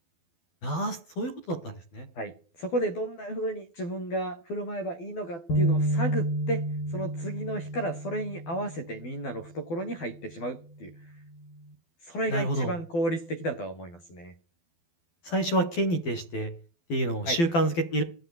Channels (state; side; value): late; right; 12 ms